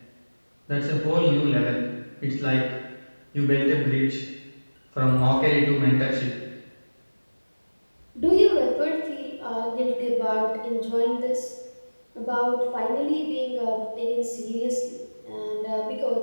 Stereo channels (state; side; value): inverted; both; correlation -1.00